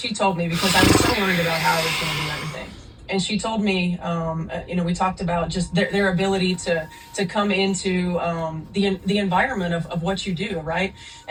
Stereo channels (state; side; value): identical; both; correlation 1.00